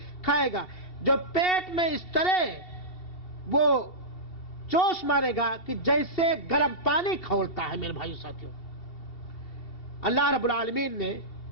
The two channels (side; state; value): right; late; 2.7 ms